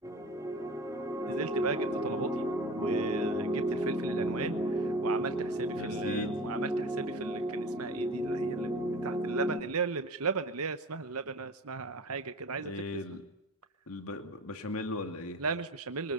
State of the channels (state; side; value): normal; both; correlation 0.37